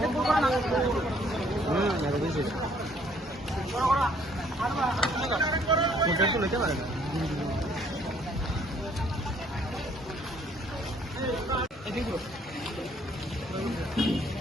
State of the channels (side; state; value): both; normal; correlation 0.63